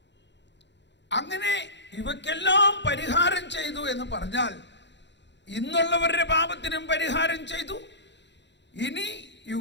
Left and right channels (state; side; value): late; right; 0.52 ms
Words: അങ്ങനെ ഇവക്കെല്ലാം പരിഹാരം ചെയ്തു എന്ന് പറഞ്ഞാൽ ഇന്നുള്ളവരുടെ പാപത്തിനും പരിഹാരം ചെയ്തു. ഇനി